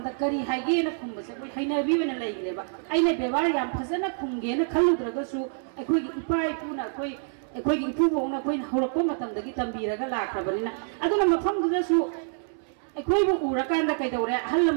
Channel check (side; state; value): left; silent; 60 dB below the other